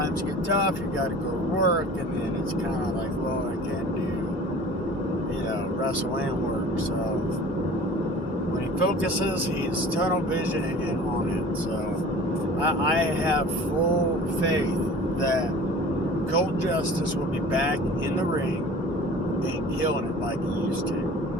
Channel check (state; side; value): normal; both; correlation 0.43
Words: get tough, you got to go to work, and then it's kind of like, well, I can't do, wrestle and work. So when he focuses, he's tunnel vision and on it. So I have full faith that Colt Justice will be back in the ring and killing it like he used